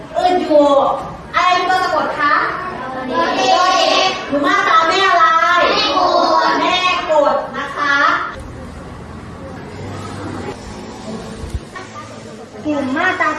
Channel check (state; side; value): identical; both; correlation 1.00